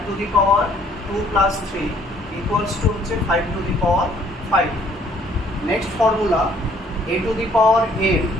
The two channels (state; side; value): normal; both; correlation 0.62